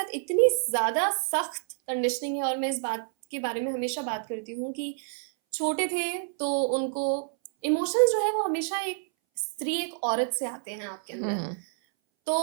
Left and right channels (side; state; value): left; silent; 59 dB below the other